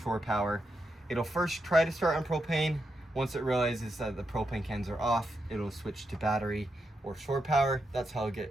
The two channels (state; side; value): normal; both; correlation 0.84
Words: power. It'll first try to start on propane. Once it realizes that the propane cans are off, it'll switch to battery or shore power. That's how